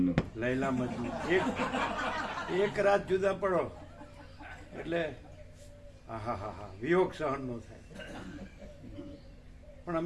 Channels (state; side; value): identical; both; correlation 1.00